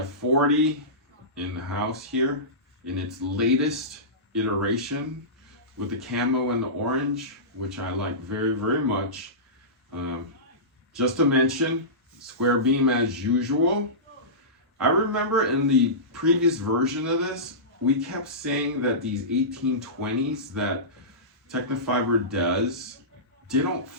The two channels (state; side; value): normal; both; correlation -0.20